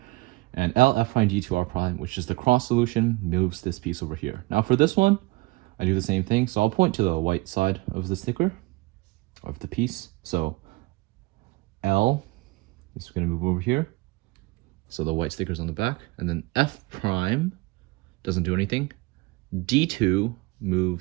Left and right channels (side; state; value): left; quieter; 22.4 dB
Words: And L, F prime, D2, R prime, which is the cross solution, moves this piece over here. Now for this one, I do the same thing. So I'll point to the white side of the sticker, of the piece. So L is going to move over here. So the white sticker's on the back. And then F prime doesn't do anything. D2